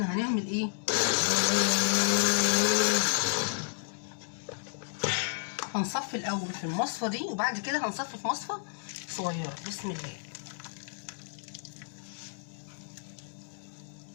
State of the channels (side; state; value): right; silent; digital silence